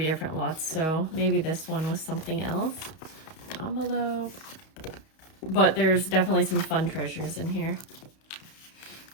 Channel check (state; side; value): late; right; 31 ms